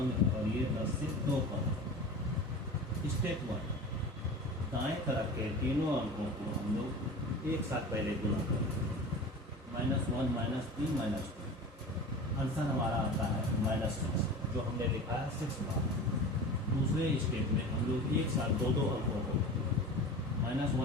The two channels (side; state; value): both; normal; correlation 0.34